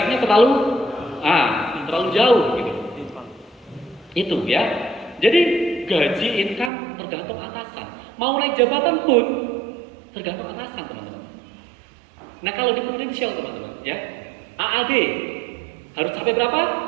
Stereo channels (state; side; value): drops out; left; at 6.7 s